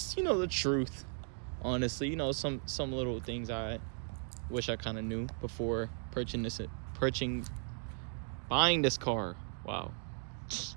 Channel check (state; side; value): silent; left; 53 dB below the other